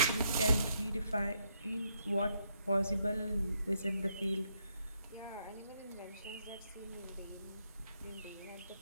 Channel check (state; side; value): inverted; both; correlation -0.75